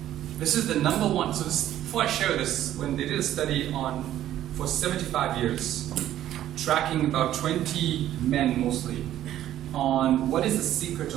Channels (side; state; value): left; quieter; 12.5 dB